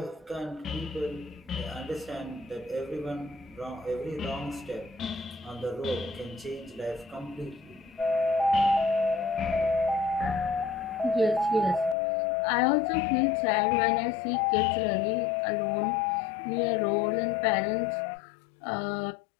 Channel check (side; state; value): right; drops out; at 12.0 s